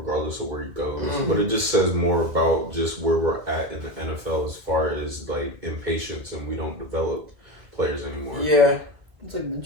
of where he goes, but it just says more about just where we're at in the NFL as far as like impatience, and we don't develop players anymore. Yeah, it's like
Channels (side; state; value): left; late; 2.1 ms